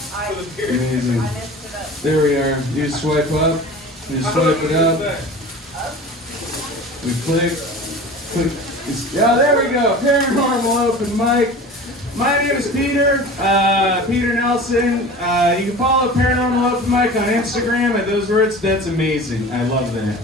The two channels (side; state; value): both; normal; correlation 0.38